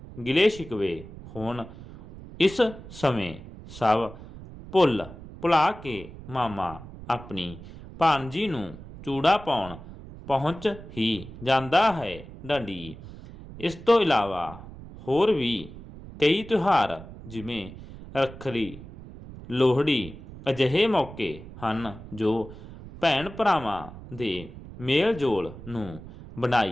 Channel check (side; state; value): right; noise; rumble, 15 dB below the sound